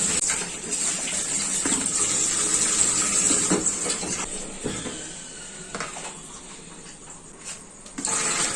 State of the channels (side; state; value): both; identical; correlation 1.00